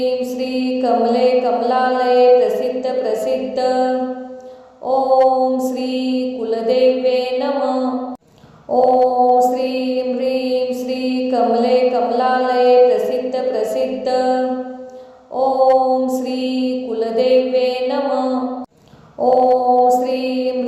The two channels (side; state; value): both; identical; correlation 1.00